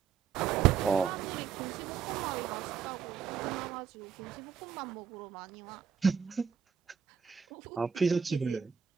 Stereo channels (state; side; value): quieter; left; 7.2 dB